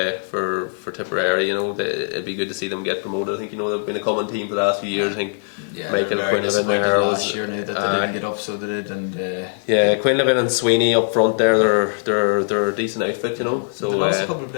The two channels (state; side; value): silent; right; 62 dB below the other